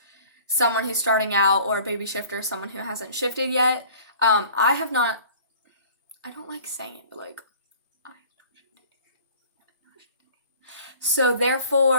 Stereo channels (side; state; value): both; inverted; correlation -0.48